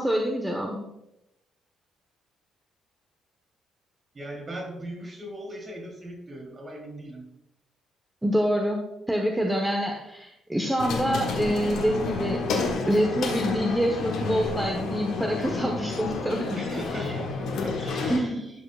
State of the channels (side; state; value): both; normal; correlation 0.84